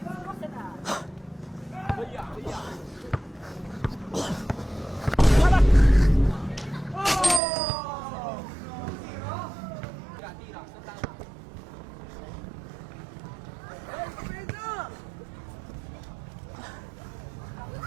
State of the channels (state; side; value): drops out; left; at 7.4 s